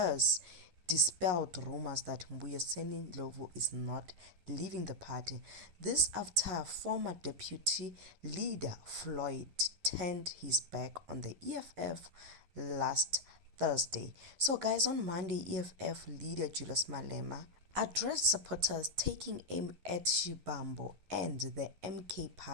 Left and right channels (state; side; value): late; left; 11 ms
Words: dispelled rumors that mbuyiseni ndlovu is not leaving the party. This after former deputy leader Floyd turned his back on the EFF last Thursday. So guys, on Monday, EFF leader Julius Malema addressed supporters taking aim at Shibambo and the MK